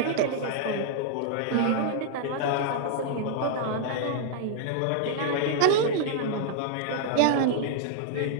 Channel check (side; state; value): both; different; correlation -0.01